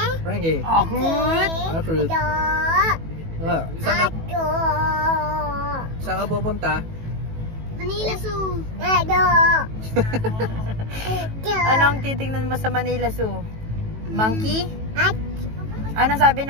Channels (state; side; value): late; left; 18 ms